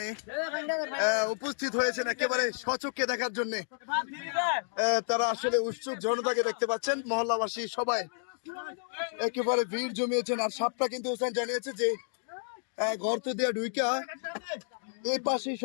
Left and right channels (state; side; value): silent; right; digital silence